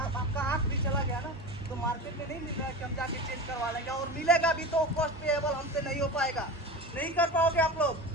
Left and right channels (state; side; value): normal; both; correlation 0.28